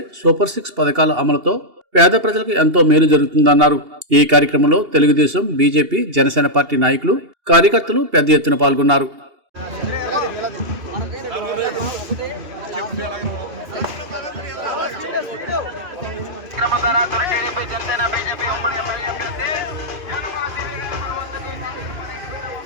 సూపర్ 6 పథకాల అమలుతో పేద ప్రజలకు ఎంతో మేలు జరుగుతుందన్నారు. ఈ కార్యక్రమంలో తెలుగుదేశం, బీజేపీ, జనసేన పార్టీ నాయకులు, కార్యకర్తలు పెద్ద ఎత్తున పాల్గొన్నారు.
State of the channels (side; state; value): left; late; 2.8 ms